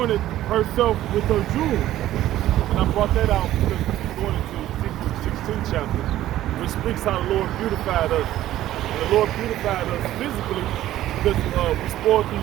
herself with her jewels. And I brought that out because we're going into Ezekiel 16 chapter, which speaks how the Lord beautified us. And the Lord beautified us physically because we spoiled the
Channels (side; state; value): left; quieter; 13.8 dB